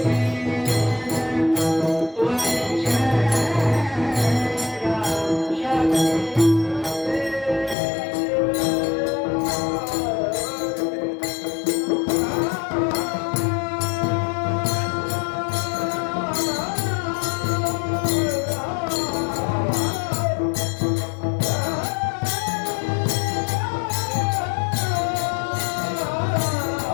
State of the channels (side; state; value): right; drops out; at 7.8 s